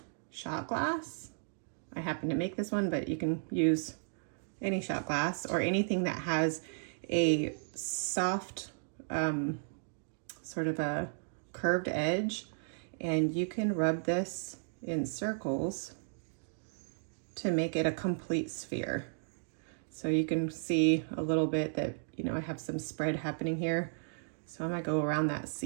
shot glass. I happen to make this one, but you can use any shot glass or anything that has a soft, sort of a curved edge, and you can rub this in circles to make it a complete sphere. So you can see a little bit that, I have some spread happening here. So I might go around that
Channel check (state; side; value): silent; left; digital silence